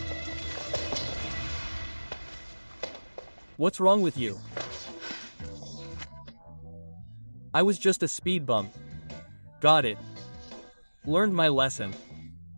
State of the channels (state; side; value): inverted; both; correlation -1.00